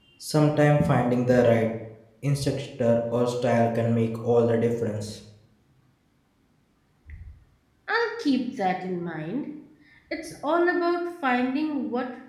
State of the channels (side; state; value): both; identical; correlation 1.00